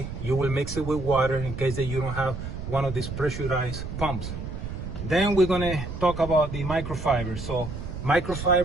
You will mix it with water in case that you don't have one of these pressurized pumps. Then we're gonna talk about the microfibers. So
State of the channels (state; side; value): noise; right; rumble, 7 dB below the sound